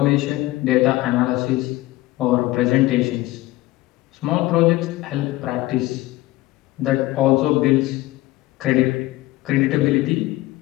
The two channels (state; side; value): quieter; right; 17.8 dB